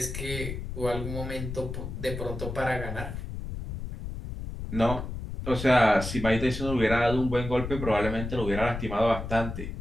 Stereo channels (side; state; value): left; noise; rumble, 7 dB below the sound